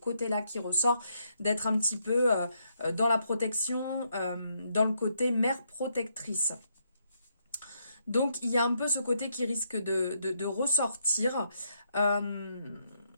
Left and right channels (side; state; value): both; inverted; correlation -0.77